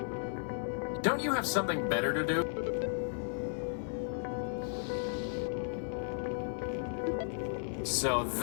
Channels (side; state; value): right; silent; digital silence